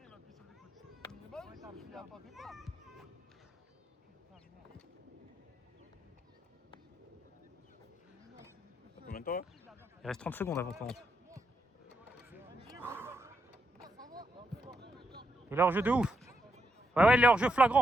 Combien de temps? Il reste 30 secondes avant qu'on rentre. Il est hors jeu de ouf. Ouais, il est hors jeu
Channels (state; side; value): normal; both; correlation 0.81